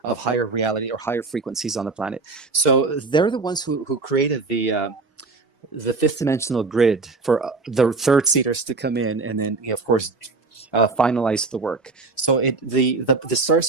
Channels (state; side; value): quieter; left; 3.9 dB